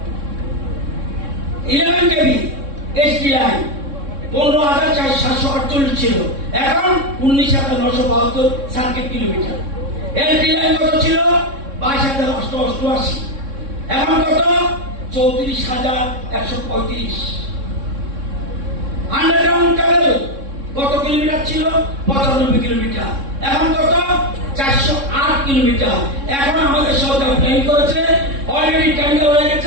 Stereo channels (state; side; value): late; left; 3.6 ms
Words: 11 কেবি এসটি লাইন 15,748 ছিল এখন 19,972 সার্কিট কিলোমিটার এলটি লাইন কত ছিল 22,888 এখন কত 34,135 আন্ডারগ্রাউন্ড কেবল কত কিলোমিটার ছিল 95 কিলোমিটার এখন কত 408 কিলোমিটার এখন আমাদের সরকার প্ল্যান করেছে অলরেডি টেন্ডার হয়ে